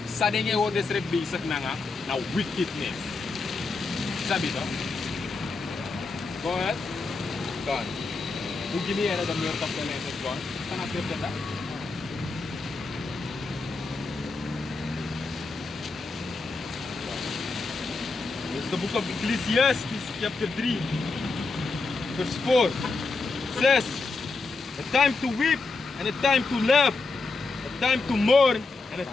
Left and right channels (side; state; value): right; quieter; 3.8 dB